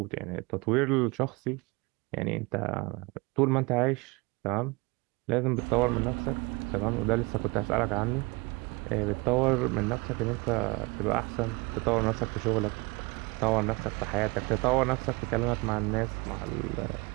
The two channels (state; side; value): quieter; left; 26.3 dB